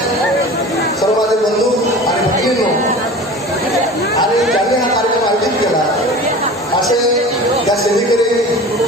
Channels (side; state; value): both; normal; correlation 0.37